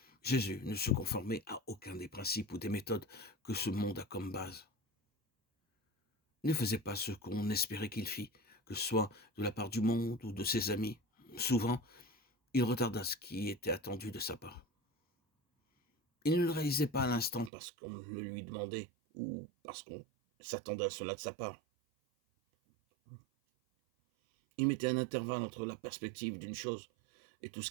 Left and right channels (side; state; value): left; drops out; at 17.5 s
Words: Jésus ne se conformait à aucun des principes ou des méthodes que ce monde a comme base. Il ne faisait pas ce qu'on espérait qu'il fît, que ce soit de la part du monde ou de ses amis. Souvent, il retarda ce qui était attendu de sa part. Il ne le réalisait pas à l'instant parce qu'on le lui demandait ou parce qu'on s'attendait à cela de sa part. Il mettait un intervalle entre la perspective d'une chose et tout ce